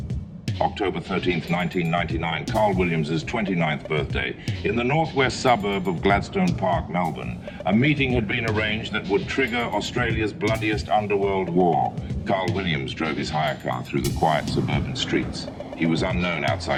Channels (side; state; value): both; identical; correlation 1.00